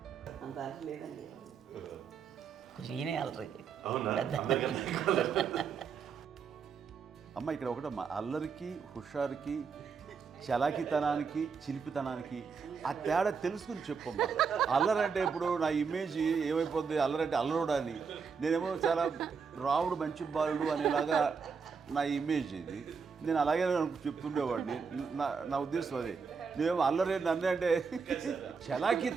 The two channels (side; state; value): left; quieter; 5.7 dB